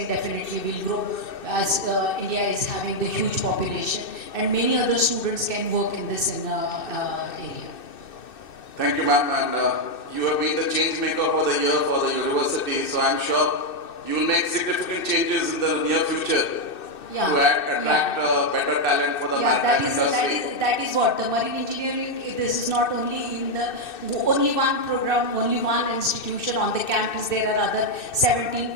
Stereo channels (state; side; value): late; right; 2.6 ms